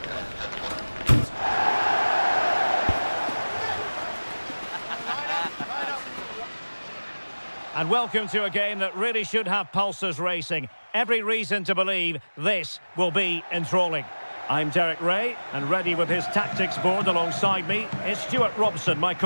And welcome to a game that really should have pulses racing. Every reason to believe this will be enthralling. I'm Derek Ray, and ready with his tactics board alongside me is Stuart Robson, my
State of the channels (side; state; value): both; inverted; correlation -1.00